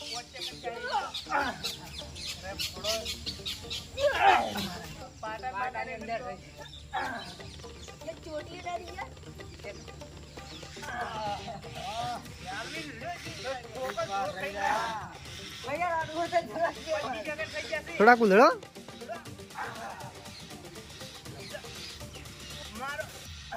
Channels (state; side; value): identical; both; correlation 1.00